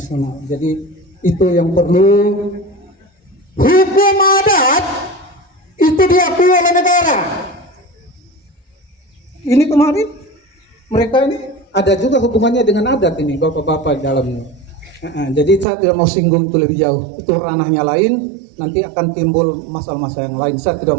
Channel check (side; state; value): left; drops out; at 15.7 s